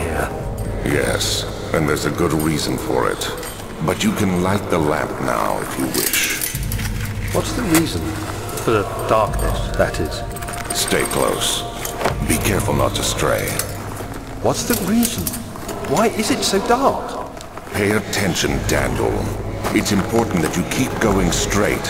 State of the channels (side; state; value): both; identical; correlation 1.00